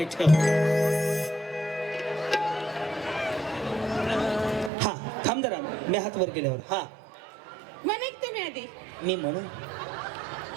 हा थांब जरा मी हात वर केल्यावर हा म्हणे तुम्ही आधी मी म्हणू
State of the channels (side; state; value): left; drops out; at 4.7 s